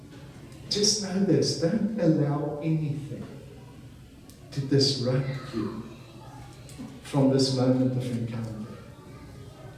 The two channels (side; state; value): both; identical; correlation 1.00